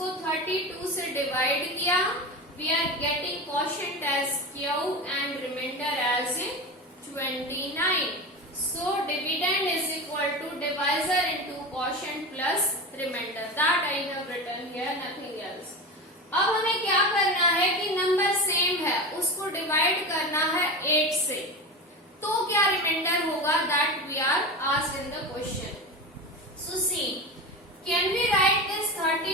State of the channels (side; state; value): both; normal; correlation 0.25